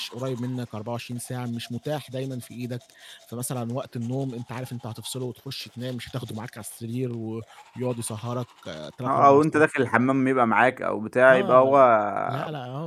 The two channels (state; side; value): identical; both; correlation 1.00